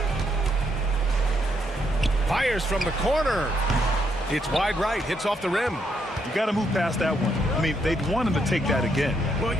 Fires from the corner. It's wide right. Hits off the rim. You got to move past that one. I mean, they'd want him to take that again. Well,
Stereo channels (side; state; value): both; normal; correlation 0.76